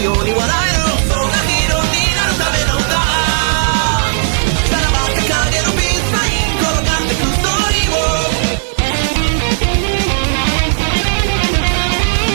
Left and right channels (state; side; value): silent; left; 61 dB below the other